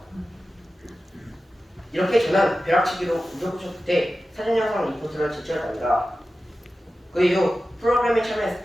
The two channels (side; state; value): both; normal; correlation 0.94